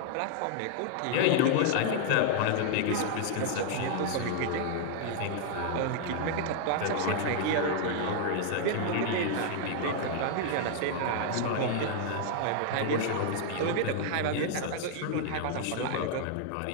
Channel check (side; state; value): both; different; correlation 0.00